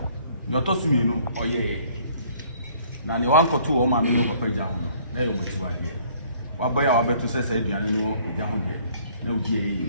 your Tosumino, or ye. Now, the 1 or 2 or Mamino of Pejano, there you were. What boy I bet to say, Diano, a young day. No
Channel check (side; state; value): both; inverted; correlation -0.59